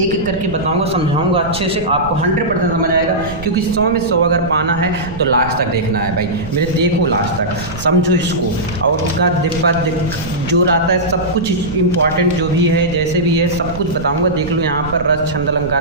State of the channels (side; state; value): right; noise; rumble, 12 dB below the sound